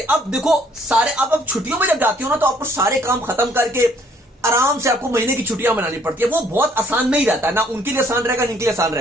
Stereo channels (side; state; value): both; normal; correlation 0.63